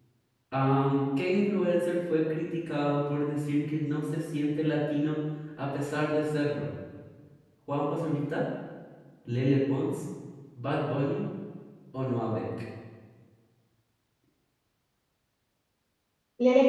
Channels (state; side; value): identical; both; correlation 1.00